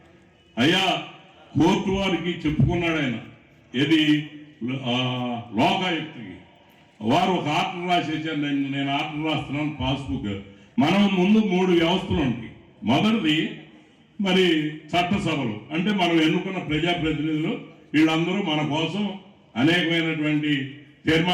అయ్యా కోర్టు వారికి చెప్పుకున్నాడు ఆయన, ఏది లోకాయుక్తికి. వారు ఒక ఆర్డర్ రాసేసారు, నేను ఆర్డర్ రాస్తున్నాను పాస్బుక్. మనం ముందు 3 వ్యవస్థలు ఉంటాయి. మొదటిది మరి చట్టసభలు, అంటే మనం ఎన్నుకున్న ప్రజాప్రతినిధులు, వీళ్ళందరూ మన కోసం అనేకమైనటువంటి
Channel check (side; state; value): both; identical; correlation 1.00